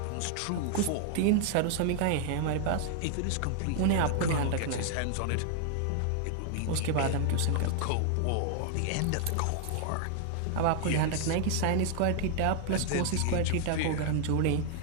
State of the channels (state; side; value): different; both; correlation 0.00